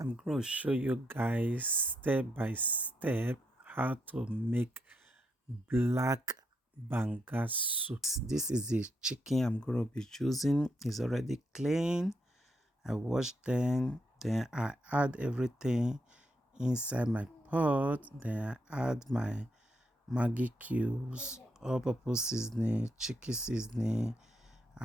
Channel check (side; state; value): both; normal; correlation 0.79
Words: going to show you guys step by step how to make black banga soup. This is the chicken I'm going to be using. It's already clean. I washed them. Then I add everything inside my pot. Then I add my Maggi cubes, all-purpose seasoning, chicken seasoning.